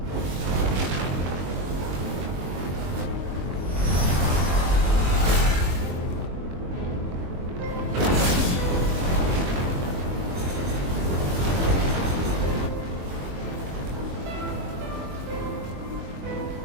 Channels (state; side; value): late; left; 22 ms